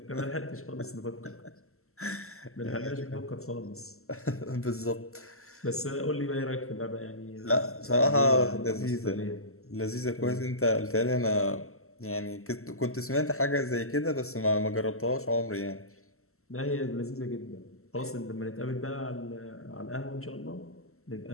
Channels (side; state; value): right; late; 0.63 ms